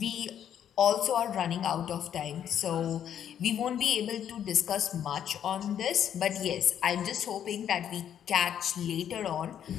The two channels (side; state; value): right; quieter; 9.5 dB